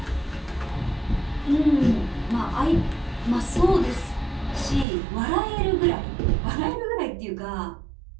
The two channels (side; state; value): left; drops out; at 4.9 s